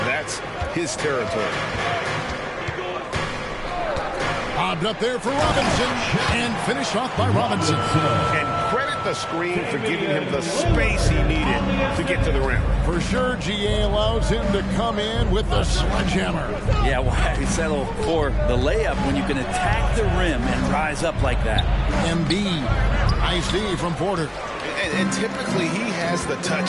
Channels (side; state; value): both; identical; correlation 1.00